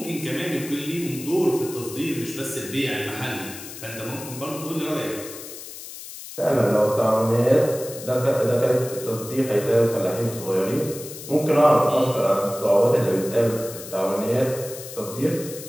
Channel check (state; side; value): noise; left; hiss, 12 dB below the sound